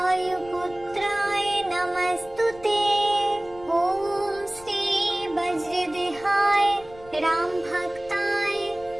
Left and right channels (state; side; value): noise; left; rumble, 21 dB below the sound